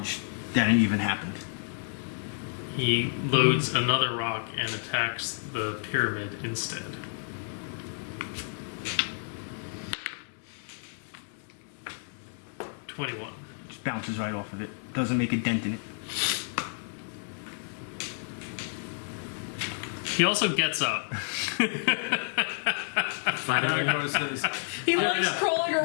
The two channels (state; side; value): silent; right; digital silence